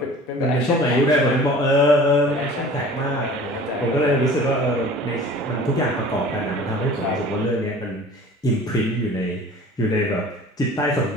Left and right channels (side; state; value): both; normal; correlation 0.44